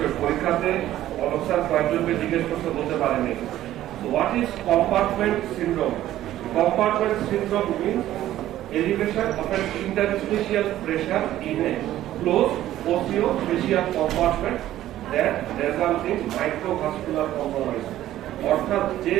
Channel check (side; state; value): left; quieter; 13.5 dB